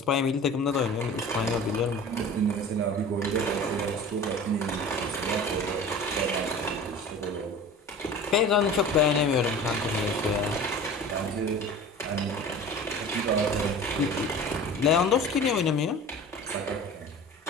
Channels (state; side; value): normal; both; correlation 0.39